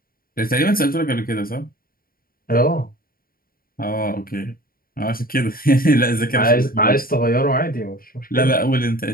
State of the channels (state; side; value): late; right; 0.42 ms